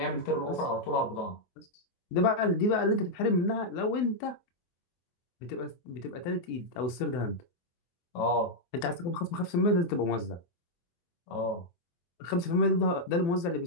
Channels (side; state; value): right; late; 23 ms